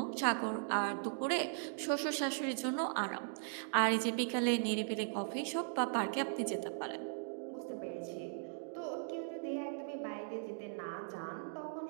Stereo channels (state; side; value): silent; left; digital silence